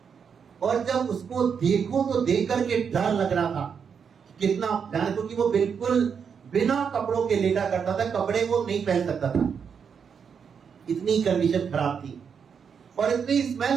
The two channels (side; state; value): left; quieter; 6.7 dB